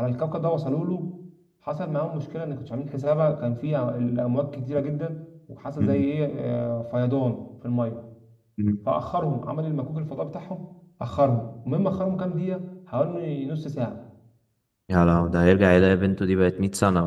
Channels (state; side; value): identical; both; correlation 1.00